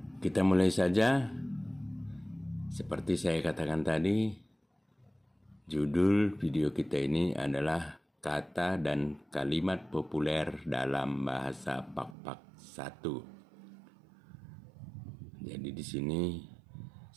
Kita mulai saja. Seperti saya katakan tadi, judul video kita ini adalah Kata dan Kalimat Populer dalam Bahasa Pak-Pak 1. Jadi di sini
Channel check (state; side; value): drops out; left; at 12.2 s